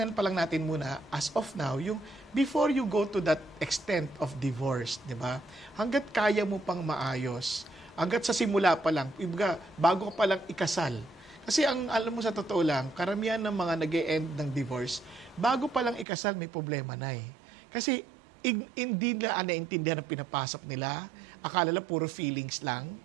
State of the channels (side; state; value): left; drops out; at 16.1 s